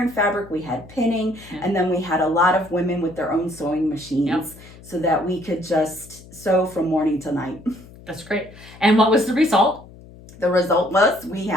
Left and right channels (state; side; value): noise; left; hum, 20 dB below the sound